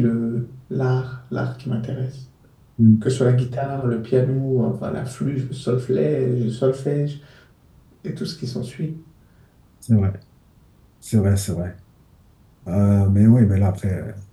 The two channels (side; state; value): both; identical; correlation 1.00